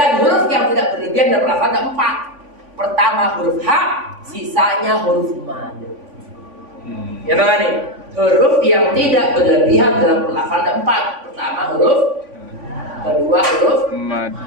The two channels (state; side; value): late; left; 3.5 ms